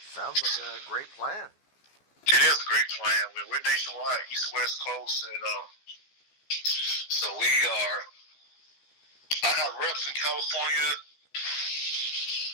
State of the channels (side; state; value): right; late; 14 ms